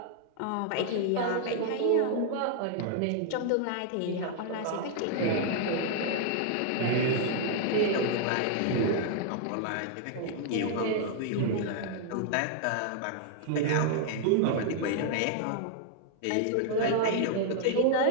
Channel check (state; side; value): different; both; correlation 0.00